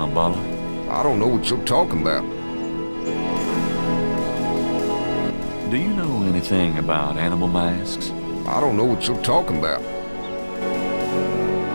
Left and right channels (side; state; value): both; inverted; correlation -1.00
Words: I don't know what you're talking about. Do you know anything about animal masks? I don't know what you're talking about.